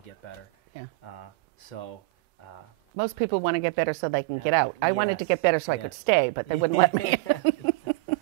get better. Yeah. Most people want to get better so they can get out. I wanted to get better so I could stay, but they wouldn't let me.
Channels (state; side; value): quieter; left; 25.0 dB